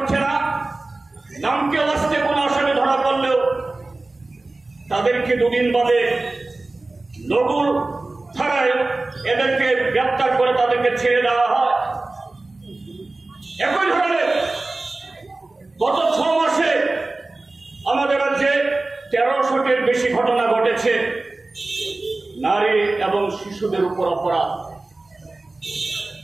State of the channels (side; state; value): left; quieter; 3.1 dB